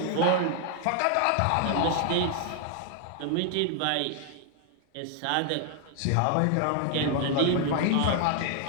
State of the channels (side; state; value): both; different; correlation 0.00